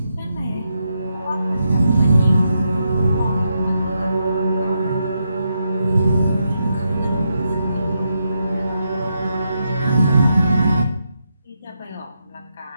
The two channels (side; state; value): both; inverted; correlation -0.83